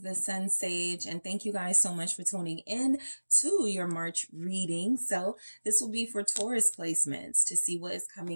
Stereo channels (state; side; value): inverted; both; correlation -1.00